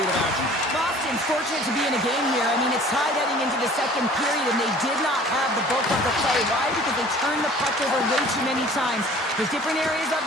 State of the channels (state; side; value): normal; both; correlation 0.49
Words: of action? Boston's fortunate to be in a game here. I mean, it's tied heading into the second period, and they did not have the bulk of the play. Why? Because they turned the puck over way too many times. There's different areas of